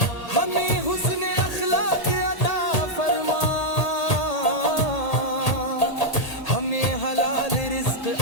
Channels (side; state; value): right; late; 1.8 ms